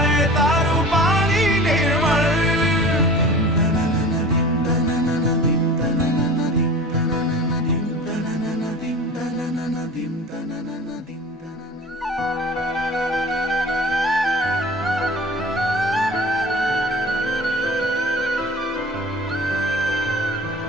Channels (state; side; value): normal; both; correlation 0.39